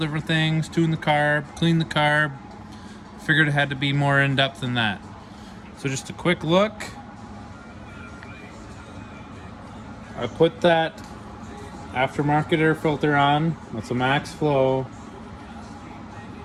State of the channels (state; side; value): identical; both; correlation 1.00